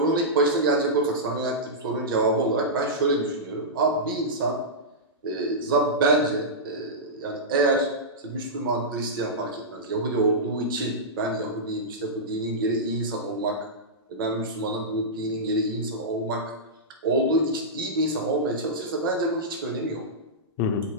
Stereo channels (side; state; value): both; normal; correlation -0.13